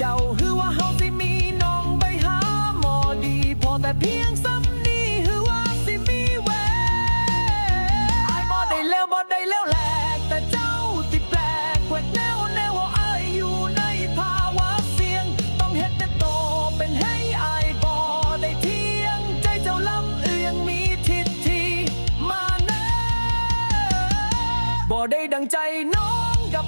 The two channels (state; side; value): inverted; both; correlation -1.00